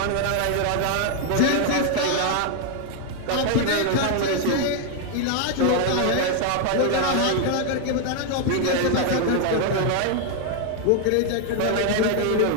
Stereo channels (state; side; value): different; both; correlation 0.00